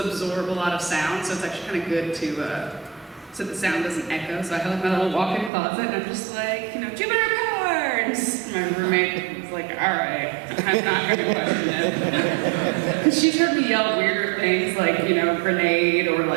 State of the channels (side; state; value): left; drops out; at 5.5 s